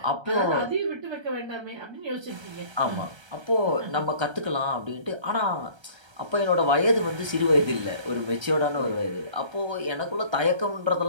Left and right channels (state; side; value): late; left; 1.3 ms